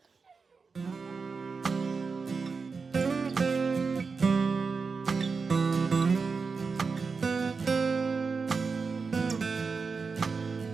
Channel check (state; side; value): quieter; left; 4.8 dB